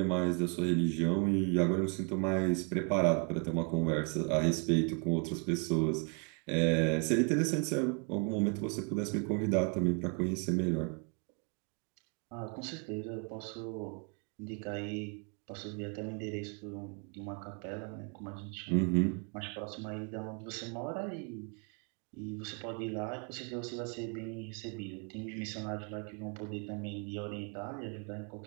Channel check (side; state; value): left; quieter; 38.1 dB